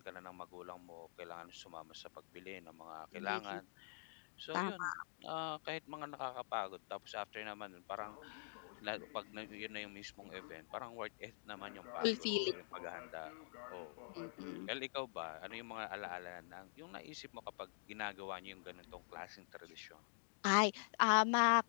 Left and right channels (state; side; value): silent; right; digital silence